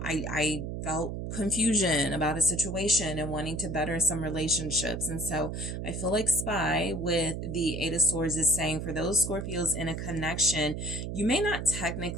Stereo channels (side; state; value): right; noise; hum, 5 dB below the sound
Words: felt confusion about a situation and wanting to better some relationships. And so I feel like spy with the Eight of Swords is saying for those Scorpios in a connection, you may not